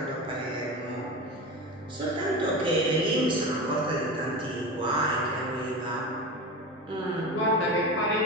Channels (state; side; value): normal; both; correlation 0.26